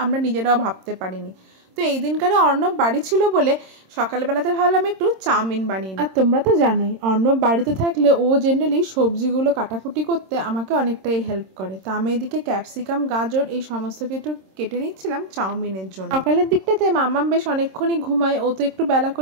আমরা নিজেরাও ভাবতে পারিনি। তো এই দিনকারে অর্ণব বাড়ি ছিল বলে সকালবেলাতে ভাবলাম একটু চাউমিন বানিয়ে। আর তোমরা তো জানোই অর্ণব বাড়িতে থাকলে ও জেনারেলি সবজিগুলো কাটাকুটি করতে আমাকে অনেকটাই হেল্প করে। তো আমি এদিকে ক্যাপসিকাম, গাজর এই সমস্ত কিছু কেটে নিচ্ছিলাম চাউমিনের জন্য। সকালের দিকটাতে মাম্মাম বেশ অনেকক্ষণই ঘুমায়, ও তো একটু বেলা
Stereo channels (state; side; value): late; left; 26 ms